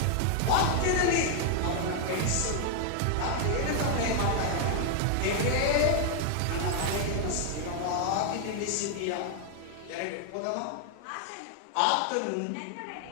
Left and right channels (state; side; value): different; both; correlation 0.00